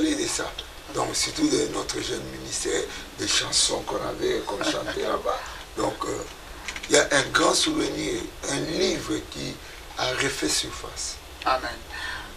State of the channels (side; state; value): both; identical; correlation 1.00